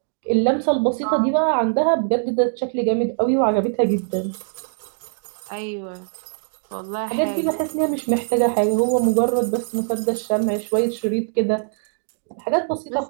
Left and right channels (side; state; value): left; silent; digital silence